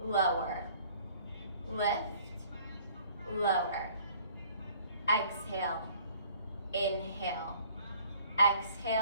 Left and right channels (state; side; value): inverted; both; correlation -0.56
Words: lower, lift, lower. Exhale, inhale,